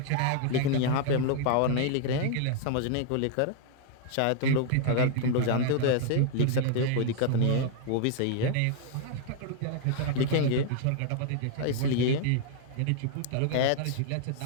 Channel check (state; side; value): different; both; correlation 0.00